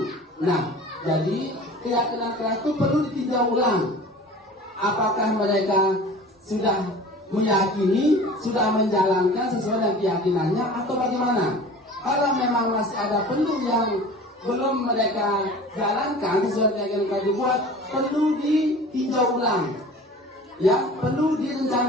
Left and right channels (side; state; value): both; normal; correlation 0.41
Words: Nah, jadi keyakinan kelas itu perlu ditinjau ulang. Apakah mereka sudah meyakini, sudah menjalankan sesuai dengan keyakinannya atau bagaimana? Kalau memang masih ada perlu yang belum mereka jalankan sesuai keyakinan yang dibuat, perlu ditinjau ulang, ya, perlu